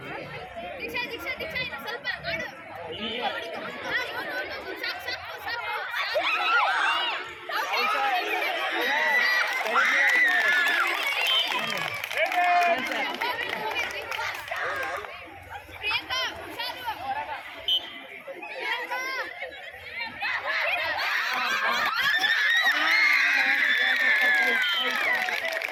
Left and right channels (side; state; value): both; identical; correlation 1.00